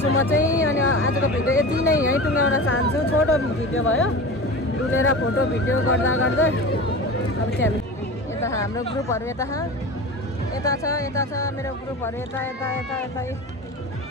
छु म चाहिँ अनि आजको भिडियो यति नै यहीँ टुङ्गाउन चाहन्छु छोटो भिडियो भयो डुलेर फोटो भिडियो गर्दा गर्दै अब चाहिँ हामी यता हाम्रो ग्रुपहरू यता छ मेरो ग्रुपहरू यता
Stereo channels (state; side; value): normal; both; correlation 0.31